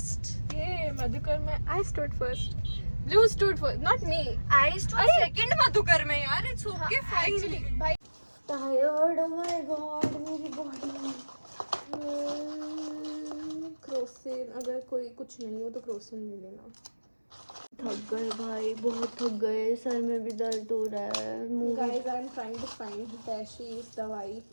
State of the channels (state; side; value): inverted; both; correlation -1.00